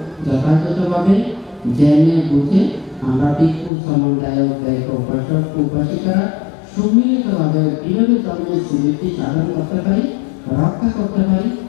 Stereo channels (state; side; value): drops out; right; at 3.7 s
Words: যথাযথভাবে জেনে বুঝে আমরা ভিক্ষু সমন্বয়ক গায়ক উপাসক উপাসিকারা সম্মিলিতভাবে কীভাবে ধর্মের সুবৃদ্ধি সাধন করতে পারি, রক্ষা করতে পারি,